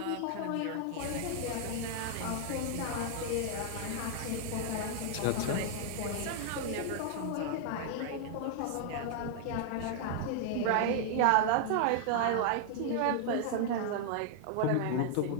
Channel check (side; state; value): both; different; correlation 0.00